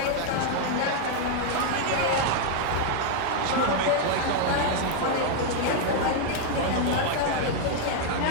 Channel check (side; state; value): both; different; correlation 0.00